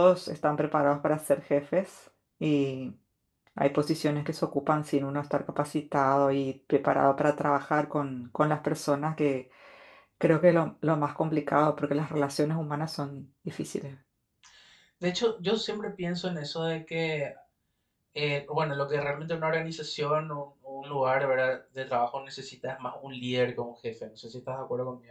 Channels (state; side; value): identical; both; correlation 1.00